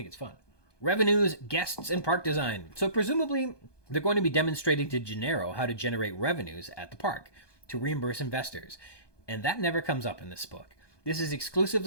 it's fun. Revenues, guests, and park design. So presumably, they're going to be demonstrating to Gennaro how to generate revenues at the park to reimburse investors. And that never comes up in this book. This is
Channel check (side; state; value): right; late; 1.2 ms